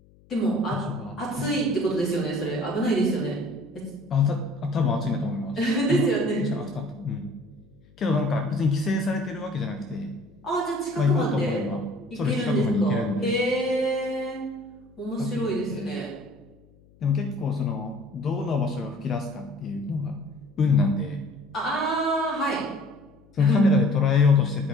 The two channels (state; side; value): noise; left; hum, 28 dB below the sound